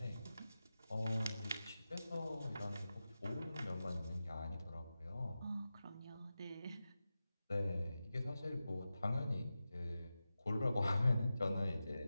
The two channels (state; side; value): inverted; both; correlation -0.93